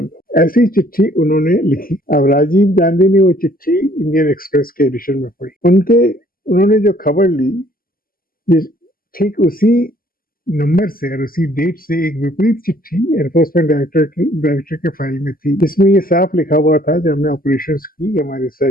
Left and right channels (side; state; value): right; late; 0.42 ms